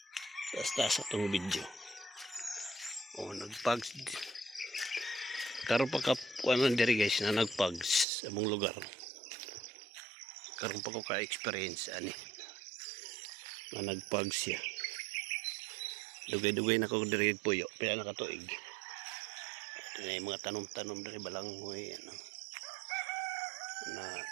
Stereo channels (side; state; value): left; drops out; at 8.1 s